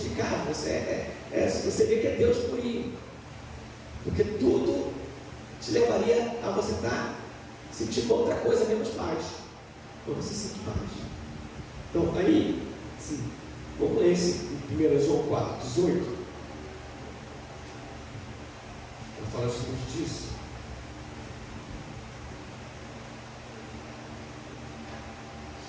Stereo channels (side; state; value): both; identical; correlation 1.00